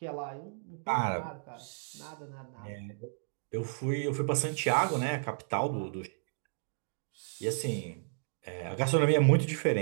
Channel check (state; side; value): silent; left; digital silence